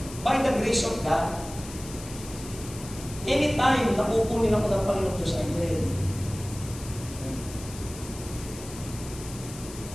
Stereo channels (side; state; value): left; noise; hiss, 14 dB below the sound